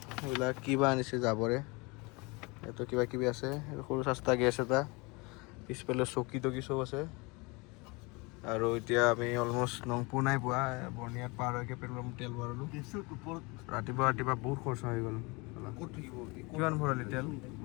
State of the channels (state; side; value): quieter; right; 27.1 dB